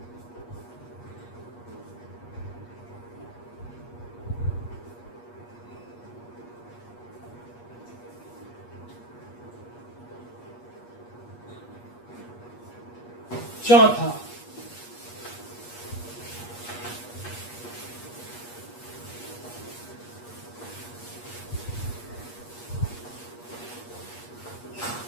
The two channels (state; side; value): late; right; 8.4 ms